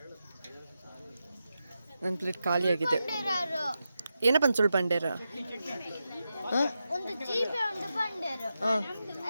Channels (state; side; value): inverted; both; correlation -0.89